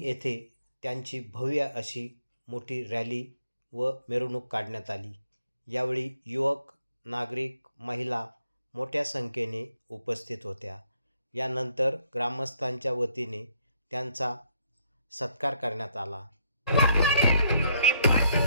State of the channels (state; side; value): inverted; both; correlation -0.70